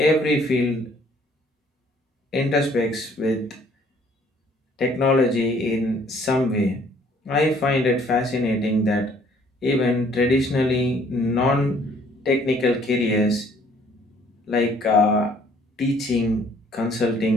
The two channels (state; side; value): normal; both; correlation 0.60